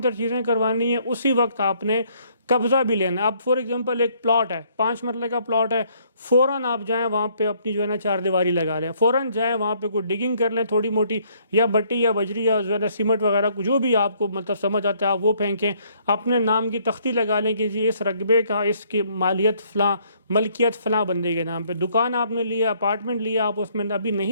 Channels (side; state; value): both; inverted; correlation -0.66